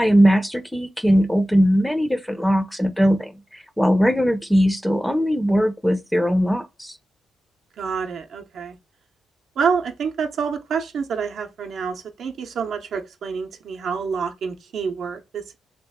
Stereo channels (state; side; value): normal; both; correlation 0.94